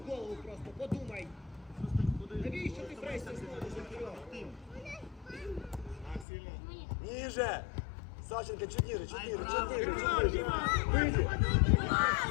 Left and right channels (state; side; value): drops out; right; at 6.2 s